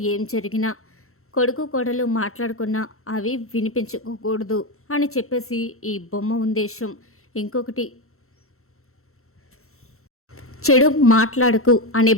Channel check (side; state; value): right; late; 0.63 ms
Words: ఏం జరిగినా కొడుకు కోడలు మాట్లాడుకున్నా అవి వినిపించుకోకూడదు అని చెప్పేసి ఈ బొమ్మ ఉద్దేశం. ఇంకొకటి, చెడు మాట్లాడకు అనే